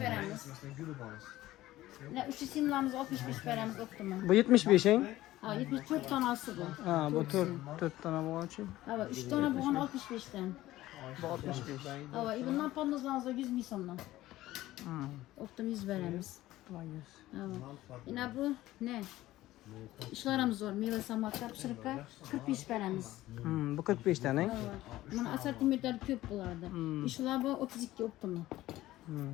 3 simlamız 65 veremiz optimum. Bu 75'in. Ha, 74 tanesi bu. Ha, bu 4 tane bu için. Ha, 3 tane buğan 65'ten. Bu 65. Ha, bundan pamuzlarımızda 100 mil sonuna. Optim 100 veremiz. Tamam 100. Ha, yine bu ne? İşlerimiz var. Meyve samaklar, pişirikler 45 veremiz. Bu 45 tane. Ha, bunun asortimentleri köp bulardı. İşler bu 32 optim.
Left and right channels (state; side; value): quieter; right; 15.9 dB